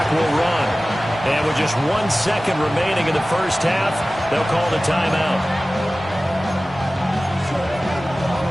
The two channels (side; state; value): both; normal; correlation 0.97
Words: will run. And with just 1 second remaining in the first half, they'll call the timeout.